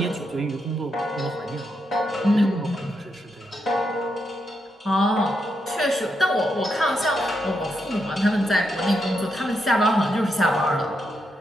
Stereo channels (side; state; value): both; normal; correlation 0.82